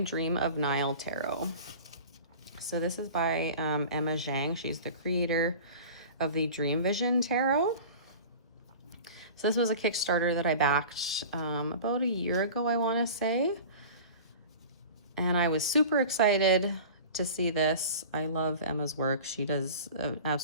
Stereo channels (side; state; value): both; inverted; correlation -0.37